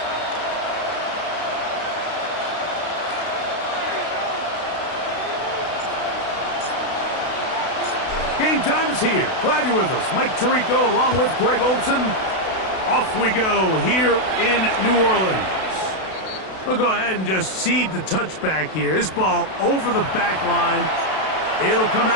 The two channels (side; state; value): right; late; 32 ms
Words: Game time is here. Glad you're with us. Mike Tirico along with Greg Olson. Off we go here in New Orleans. We'll go ahead and just seed the touchback here. This ball over the back line. It'll come